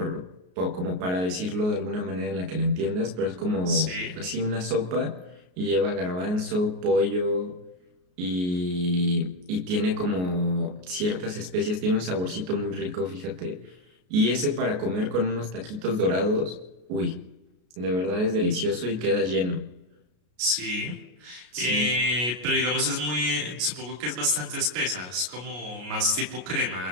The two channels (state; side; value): late; left; 33 ms